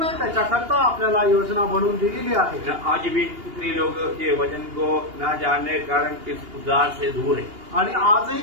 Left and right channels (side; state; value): left; late; 2.8 ms